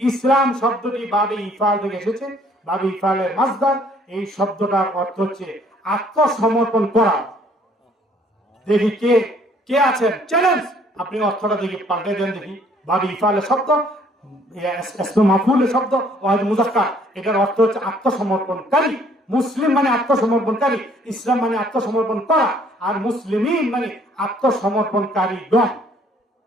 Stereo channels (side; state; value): both; normal; correlation 0.61